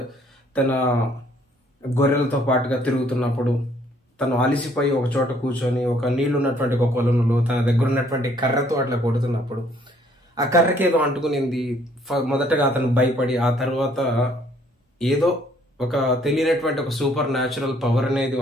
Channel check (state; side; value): normal; both; correlation 0.63